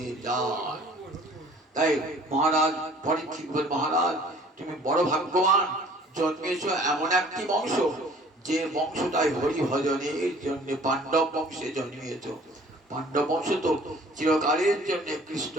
যায়। তাই মহারাজ পরীক্ষিত বলেন, মহারাজ তুমি বড় ভাগ্যবান, জন্মেছ এমন একটি বংশ, যে বংশটাই হরি ভজনের জন্য পাণ্ডব বংশে জন্মিয়েছ। পাণ্ডব বংশ তো চিরকালের জন্য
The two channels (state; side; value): normal; both; correlation 0.52